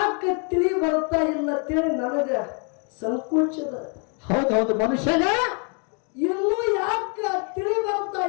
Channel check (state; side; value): quieter; right; 38.6 dB